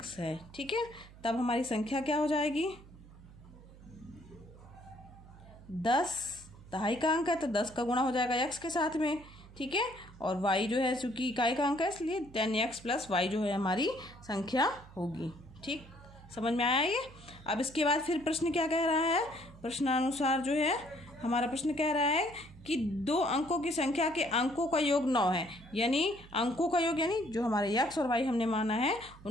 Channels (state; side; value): noise; right; hum, 20 dB below the sound